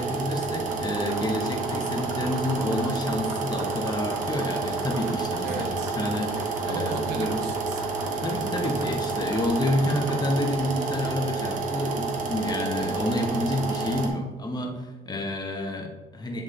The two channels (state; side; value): normal; both; correlation 0.58